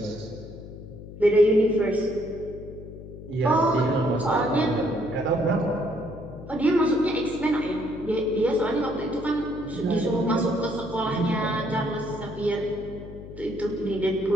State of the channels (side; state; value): left; noise; hum, 14 dB below the sound